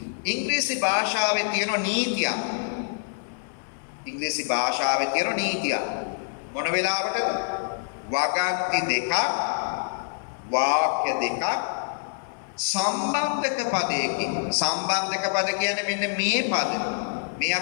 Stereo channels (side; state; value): right; silent; 61 dB below the other